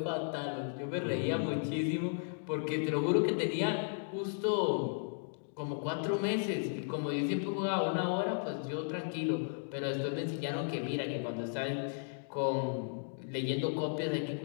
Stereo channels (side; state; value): right; silent; digital silence